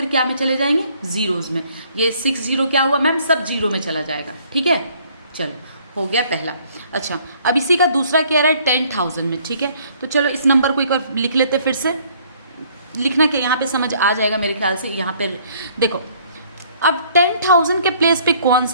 क्या में चले जाएंगे, जीरोज में। ये 60 क्या हुआ मैम, सब जीरो में चला जाएगा, ठीक है। चलो, हो गया पहला। अच्छा, अब इसी का दूसरा क्या रहा है 10,000 में, ठीक है। तो चलो इस नंबर को एक बार लिख लेते, फिर से लिखना कि यहाँ पे समझ आ जाएगा मेरे ख्याल से। यहाँ पे देखो, अब 10,000 के प्लेस पे कौन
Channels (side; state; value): both; inverted; correlation -0.61